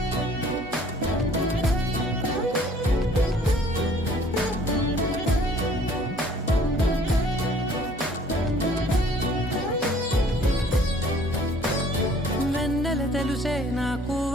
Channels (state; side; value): normal; both; correlation 0.55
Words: వెన్నెల తెలుసే నాకు